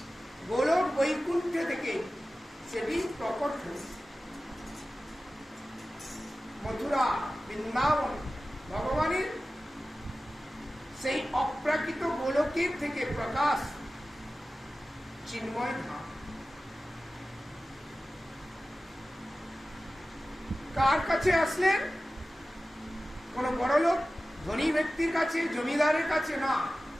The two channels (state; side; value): normal; both; correlation 0.95